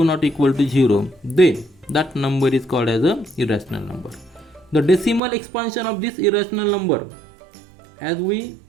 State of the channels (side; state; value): left; drops out; at 5.2 s